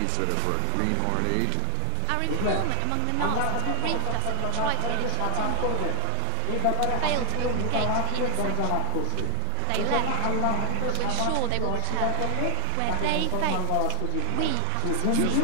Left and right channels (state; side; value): different; both; correlation 0.01